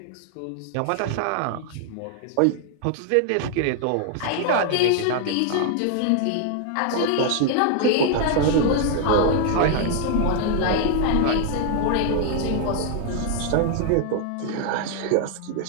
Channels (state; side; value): different; both; correlation 0.00